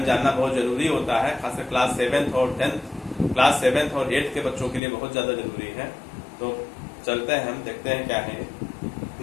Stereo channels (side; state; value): right; drops out; at 4.8 s